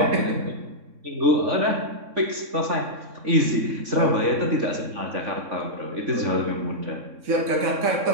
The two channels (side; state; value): left; late; 3.6 ms